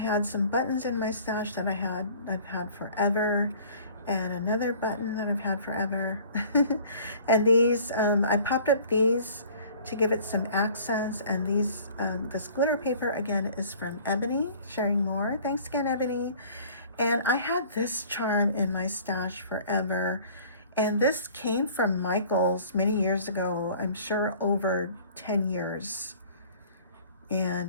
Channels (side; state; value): both; inverted; correlation -0.50